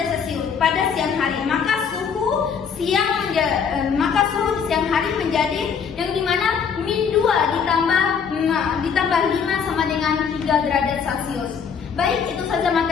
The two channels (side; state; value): right; quieter; 6.7 dB